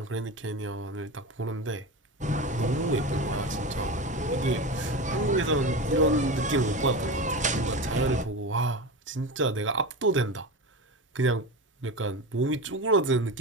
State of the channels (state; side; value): normal; both; correlation 0.24